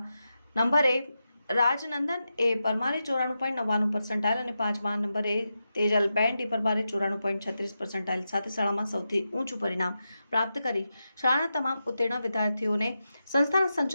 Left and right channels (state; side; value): inverted; both; correlation -0.89